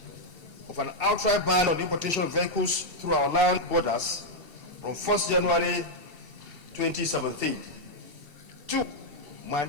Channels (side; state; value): left; late; 2.7 ms